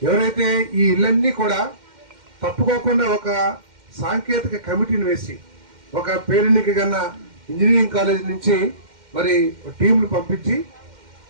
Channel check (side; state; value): left; late; 2.1 ms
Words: ఎవరైతే ఈ ఇళ్ళన్నీ కూడా తప్పుకోకుండా ఒక సాంకేతిక కమిటీని వేసి ఒక పేరెన్నిక కన్నా ఇంజనీరింగ్ కాలేజ్ నుంచి మరి టీంలు పంపించి